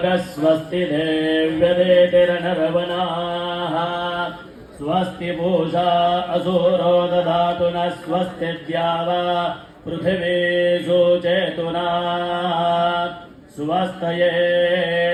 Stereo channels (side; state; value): both; identical; correlation 1.00